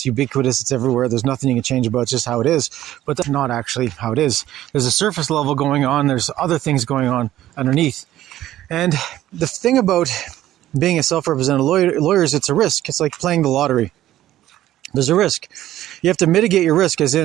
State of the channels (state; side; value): quieter; left; 13.6 dB